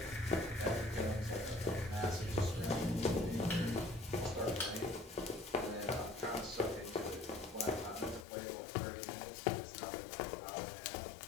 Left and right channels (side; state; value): right; drops out; at 8.2 s